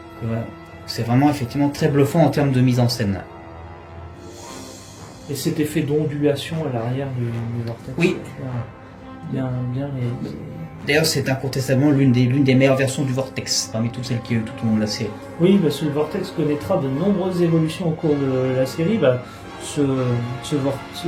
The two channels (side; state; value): both; identical; correlation 1.00